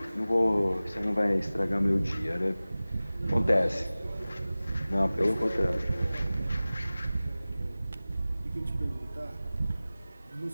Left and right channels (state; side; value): inverted; both; correlation -0.97